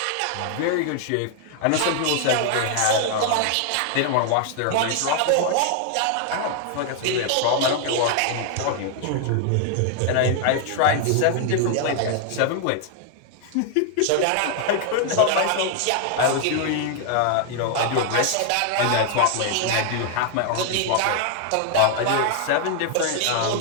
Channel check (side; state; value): both; different; correlation 0.00